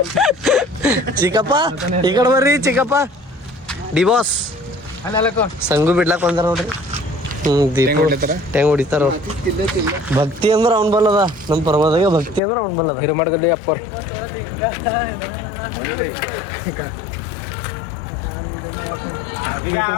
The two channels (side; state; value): right; drops out; at 12.4 s